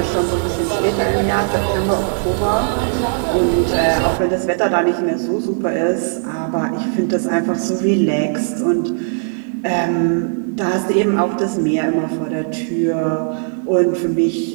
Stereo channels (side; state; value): left; silent; digital silence